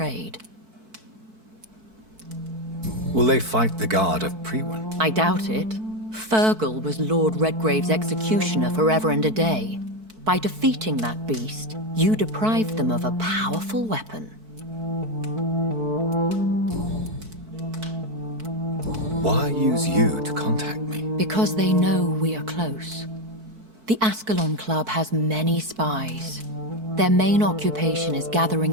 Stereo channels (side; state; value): left; late; 4.6 ms